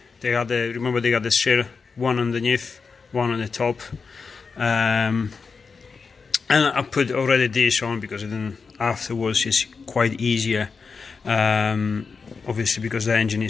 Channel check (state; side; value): quieter; right; 5.0 dB